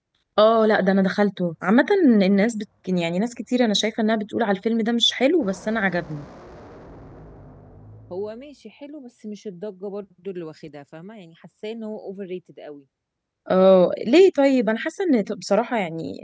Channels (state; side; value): identical; both; correlation 1.00